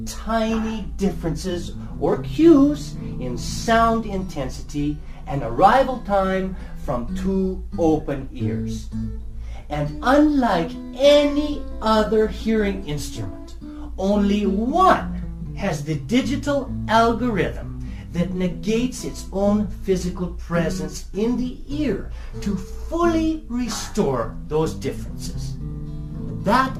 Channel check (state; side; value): identical; both; correlation 1.00